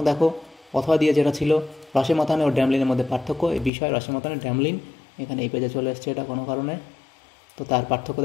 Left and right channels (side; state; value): right; drops out; at 3.7 s